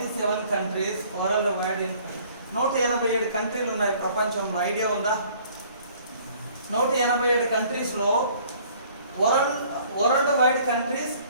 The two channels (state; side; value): inverted; both; correlation -0.56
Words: countries world wide. 187 కంట్రీలు ఉన్నాయి ప్రపంచంలో. ఐడియా ఉందా? 187 కంట్రీస్లో world wide countries